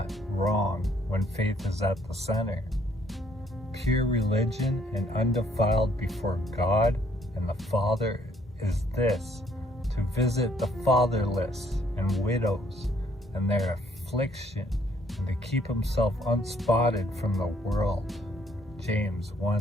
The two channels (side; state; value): both; normal; correlation 0.65